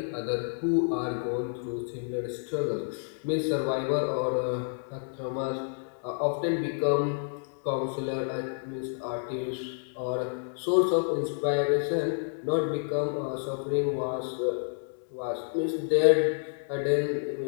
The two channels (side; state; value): right; silent; digital silence